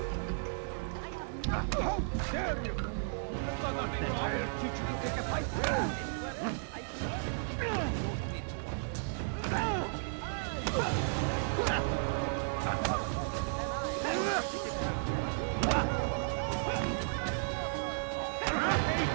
How dare you! I'll teach you to take a fight.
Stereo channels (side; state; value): left; silent; 55 dB below the other